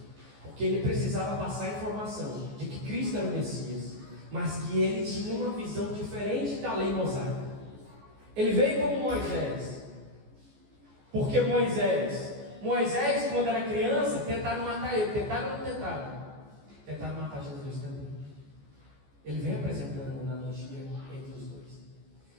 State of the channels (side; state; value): left; late; 14 ms